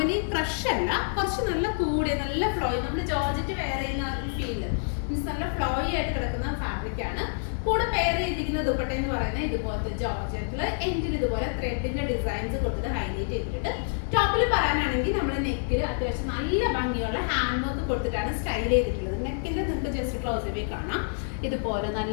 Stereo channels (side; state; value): right; silent; digital silence